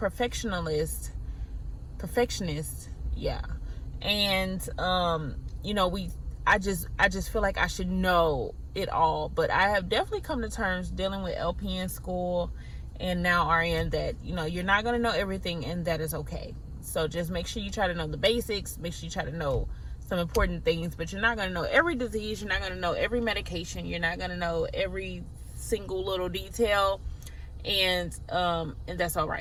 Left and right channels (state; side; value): identical; both; correlation 1.00